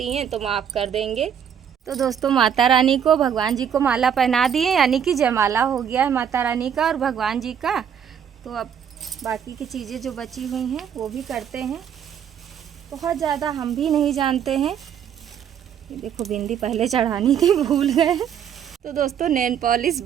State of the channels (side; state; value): left; quieter; 8.5 dB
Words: हैं तो माफ़ कर देंगे। तो दोस्तों माता रानी को, भगवान जी को माला पहना दिए, यानी कि जयमाला हो गया है माता रानी का और भगवान जी का। तो अब बाकी की चीज़ें जो बची हुई हैं वो भी करते हैं। बहुत ज़्यादा हम भी नहीं जानते हैं। ये देखो बिंदी पहले चढ़ानी थी, भूल गए। तो दोस्तों नेल पॉलिश